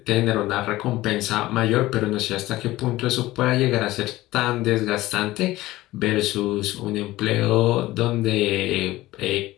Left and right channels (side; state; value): right; quieter; 17.3 dB